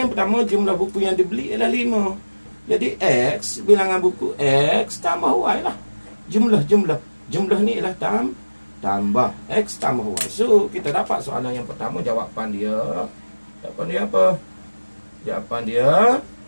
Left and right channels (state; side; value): inverted; both; correlation -1.00